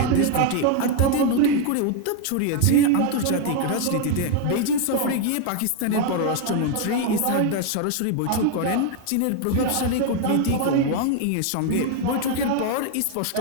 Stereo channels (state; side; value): different; both; correlation 0.01